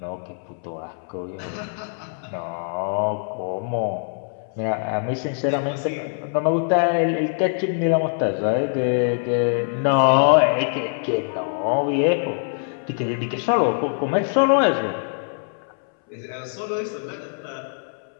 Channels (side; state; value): right; silent; 63 dB below the other